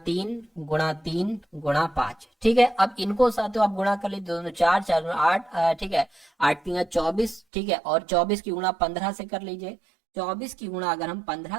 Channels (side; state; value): left; drops out; at 7.4 s